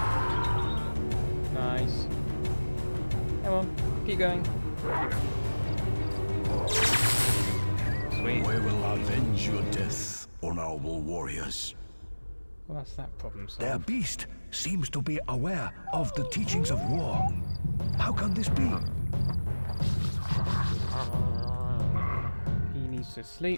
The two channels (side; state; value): both; inverted; correlation -1.00